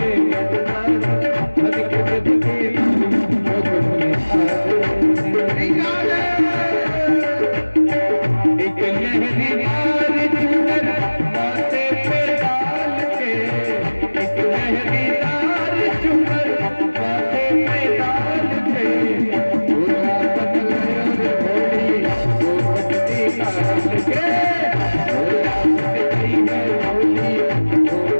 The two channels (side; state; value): both; inverted; correlation -1.00